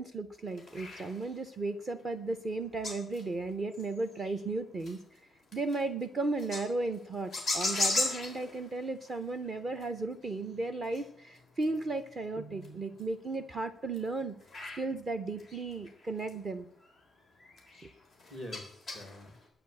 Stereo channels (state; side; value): normal; both; correlation 0.73